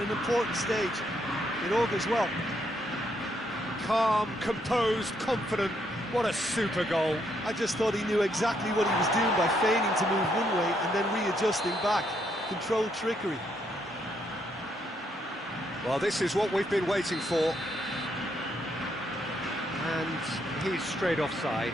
important stage. It augurs well. Calm, composed, confident. What a super goal. I just thought he knew exactly what he was doing by feigning to move one way and then readjusting back. Controlled trickery. Well, this is what we've been waiting for. And he's straight offside.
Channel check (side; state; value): both; normal; correlation 0.74